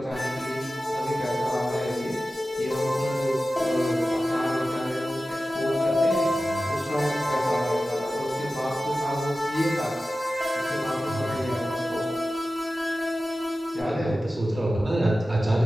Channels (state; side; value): normal; both; correlation 0.94